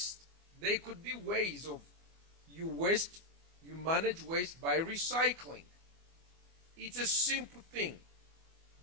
There could be ways of you manage waste by recycling. It's a simple thing,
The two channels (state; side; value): late; left; 24 ms